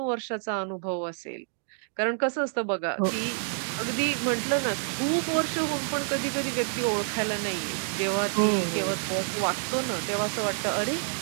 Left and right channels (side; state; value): left; silent; 59 dB below the other